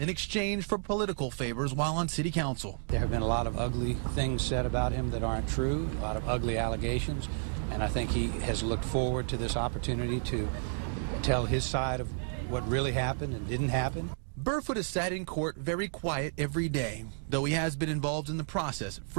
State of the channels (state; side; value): silent; left; digital silence